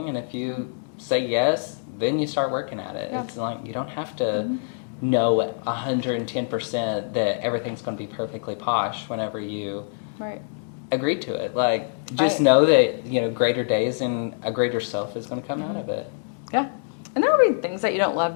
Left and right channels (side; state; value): right; silent; digital silence